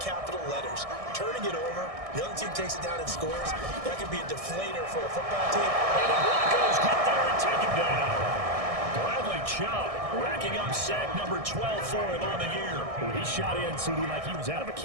capital letters. Turning it over, the other team takes it down and scores. That could be a deflator for a football team. And the Broncos get there and take him down. Bradley Chubb, racking up sack number 12 for him on the year. He shot in, CD, like he was out of a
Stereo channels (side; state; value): left; late; 1.6 ms